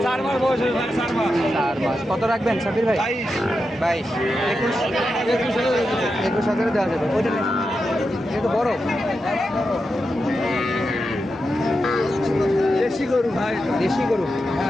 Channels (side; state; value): both; normal; correlation 0.88